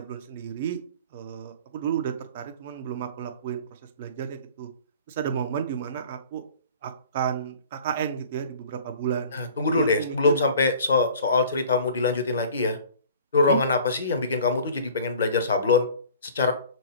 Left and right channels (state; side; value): inverted; both; correlation -0.46